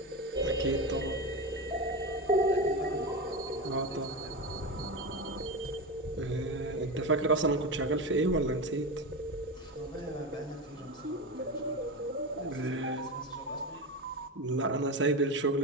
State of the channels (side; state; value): both; normal; correlation 0.19